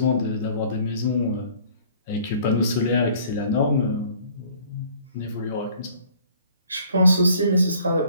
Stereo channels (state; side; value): inverted; both; correlation -0.56